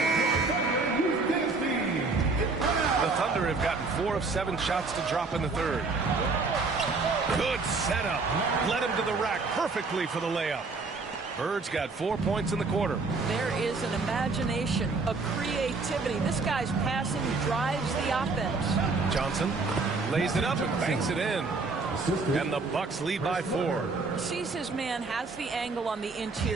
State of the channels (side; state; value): left; quieter; 4.0 dB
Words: The Thunder have gotten 4 of 7 shots to drop in the third. Good setup. Led him to the rack perfectly for the layup. Bird's got 4 points in the quarter. There is an imagination, a creativity. This guy's passing drives the offense. Johnson lays it up and banks it in. And the Bucks lead by 4. Sees his man, has the angle on the